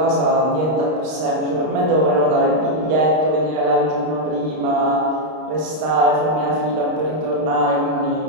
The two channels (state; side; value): late; left; 32 ms